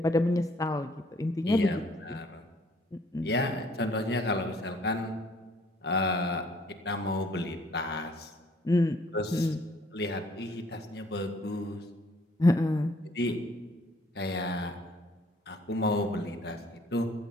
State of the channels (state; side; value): normal; both; correlation 0.61